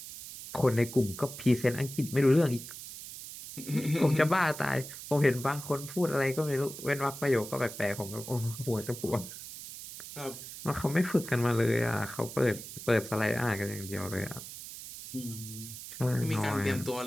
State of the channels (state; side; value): noise; right; hiss, 12 dB below the sound